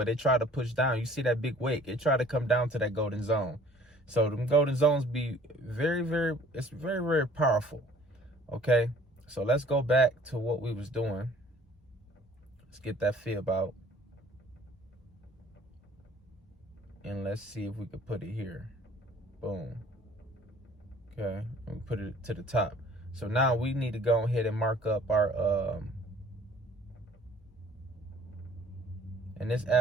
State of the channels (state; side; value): normal; both; correlation 0.54